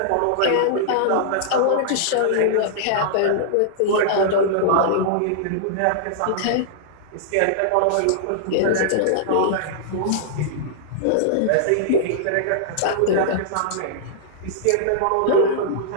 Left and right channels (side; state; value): both; different; correlation -0.01